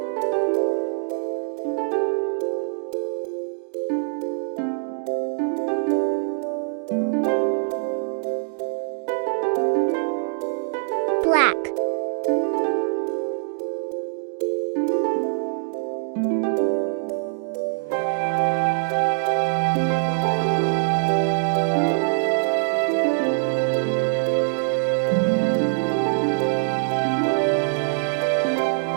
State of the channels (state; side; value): silent; left; digital silence